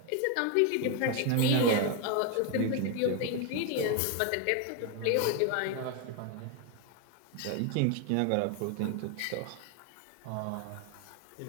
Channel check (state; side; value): different; both; correlation 0.01